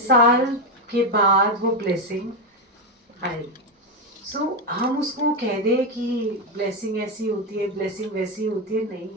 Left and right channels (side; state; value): both; normal; correlation 0.08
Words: साल के बाद वो ब्लेसिंग आई। सो हम उसको कह दे कि ब्लेसिंग ऐसी होती है, ब्लेसिंग वैसी होती है, नहीं।